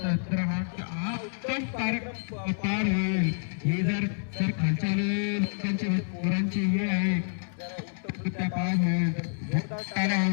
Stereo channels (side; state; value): right; silent; 59 dB below the other